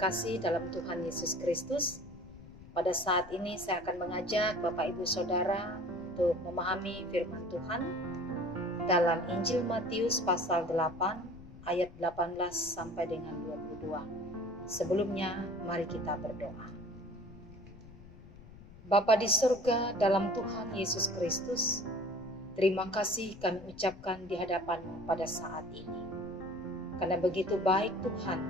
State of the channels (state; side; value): noise; left; rumble, 18 dB below the sound